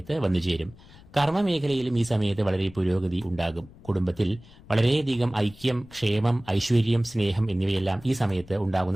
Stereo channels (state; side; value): noise; left; rumble, 22 dB below the sound